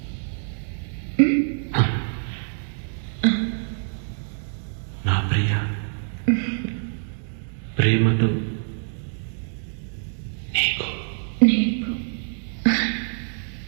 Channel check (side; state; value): left; silent; digital silence